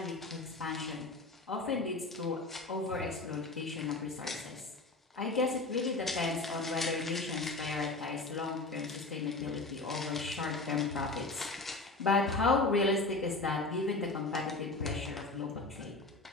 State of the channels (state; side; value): quieter; right; 3.3 dB